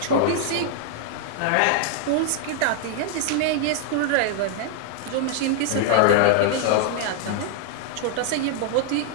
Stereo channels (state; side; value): different; both; correlation 0.00